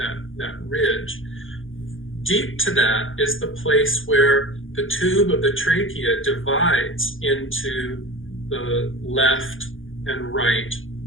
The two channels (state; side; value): late; right; 0.58 ms